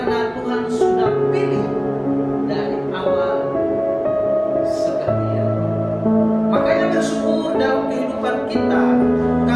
Tuhan sudah pilih dari awal seperti itu. Makanya bersyukur dalam kehidupan kita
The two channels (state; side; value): identical; both; correlation 1.00